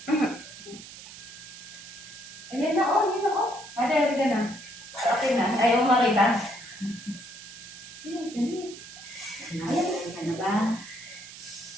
Ayan na, oh, yun na, oh. Ada ka na. Okay na. Ayaw mo makita. Nakasin ka na ba?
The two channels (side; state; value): right; noise; hiss, 15 dB below the sound